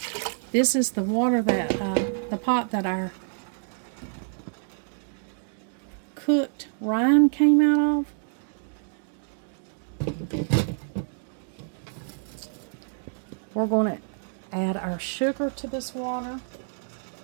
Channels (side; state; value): left; silent; 60 dB below the other